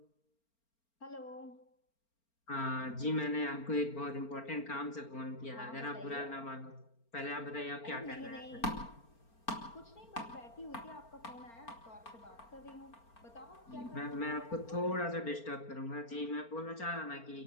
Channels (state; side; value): late; right; 4.4 ms